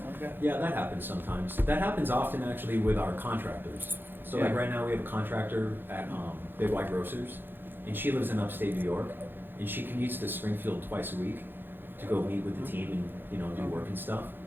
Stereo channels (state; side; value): late; left; 0.098 ms